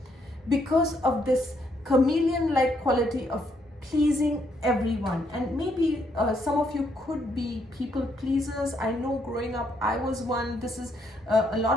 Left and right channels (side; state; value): both; normal; correlation 0.73